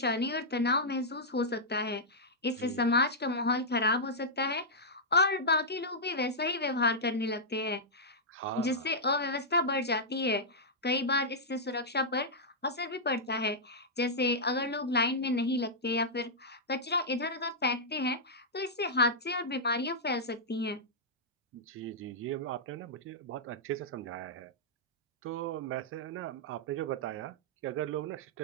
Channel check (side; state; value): both; normal; correlation -0.09